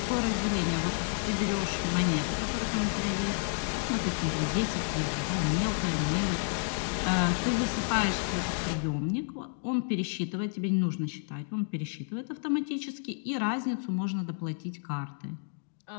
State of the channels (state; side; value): silent; right; digital silence